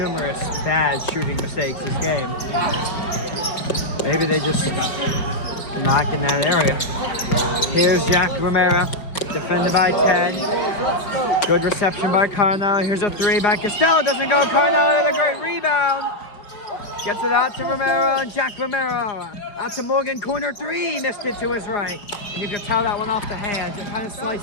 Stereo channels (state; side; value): late; right; 5.0 ms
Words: bad shooting mistakes this game. Maybe they just knock in that area. Here's Jack Romero, defended by 10. Good reception by Carnell. Here's a 3 by Costello. Doesn't go. Carnell with a great rebound. Gets it out to Romero and Jack Romero. Out to Morgan, corner 3. Missed it to his right. And you can tell that one off the hands. It kind of